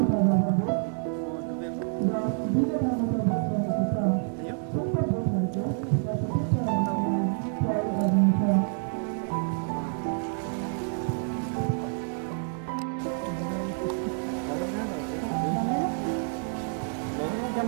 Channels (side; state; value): left; silent; 59 dB below the other